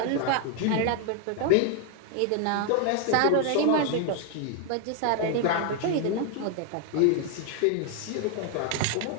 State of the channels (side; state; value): both; different; correlation 0.01